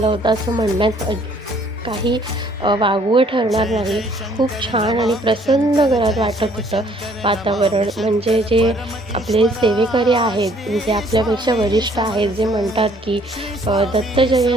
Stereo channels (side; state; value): both; normal; correlation 0.61